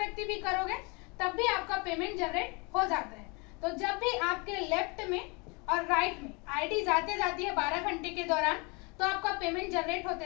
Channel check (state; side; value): quieter; right; 30.1 dB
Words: भी करोगे तब भी आपका पेमेंट जनरेट हो जाता है। तो जब भी आपके लेफ्ट में और राइट में आईडी जाते जाती है 12 घंटे के दौरान, तो आपका पेमेंट जनरेट